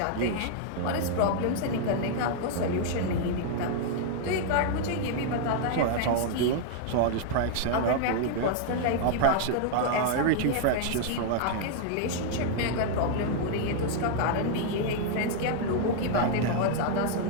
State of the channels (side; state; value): both; different; correlation 0.00